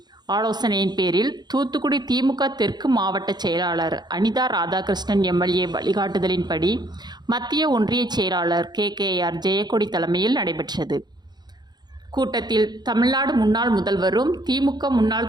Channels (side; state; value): left; late; 0.20 ms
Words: ஆலோசனையின் பேரில் தூத்துக்குடி திமுக தெற்கு மாவட்ட செயலாளர் அனிதா ராதாகிருஷ்ணன் எம்எல்ஏ வழிகாட்டுதலின்படி மத்திய ஒன்றிய செயலாளர் கேகேஆர் ஜெயக்கொடி தலைமையில் நடைபெற்றது. கூட்டத்தில் தமிழ்நாடு முன்னாள் முதல்வரும் திமுக